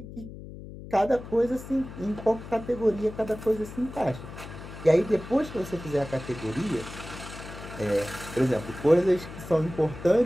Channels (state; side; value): noise; left; hum, 13 dB below the sound